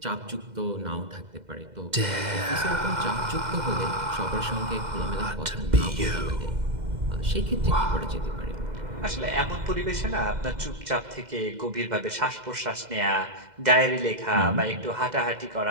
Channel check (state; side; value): late; left; 2.0 ms